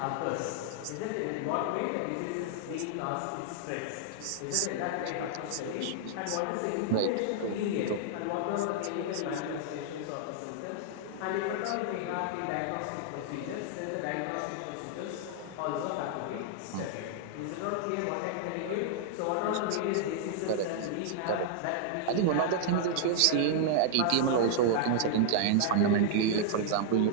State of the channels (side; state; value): both; different; correlation -0.01